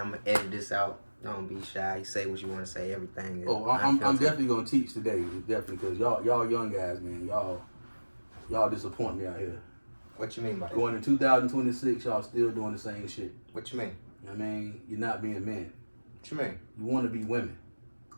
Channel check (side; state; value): both; inverted; correlation -1.00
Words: gonna edit this out. Don't be shy. You say what you want to say. Everything is I'm definitely gonna teach today. Definitely, because y'all young guys, man, y'all disappoint me out here. What you mean by that? Going in 2026, y'all still doing the same shit. What you mean? I mean, you're not being men. What you mean? You want to be women.